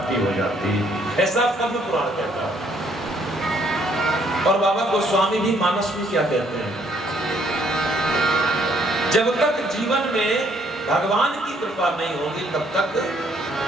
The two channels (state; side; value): normal; both; correlation 0.66